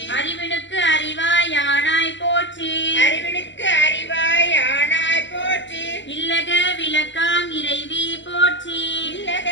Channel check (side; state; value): right; late; 0.53 ms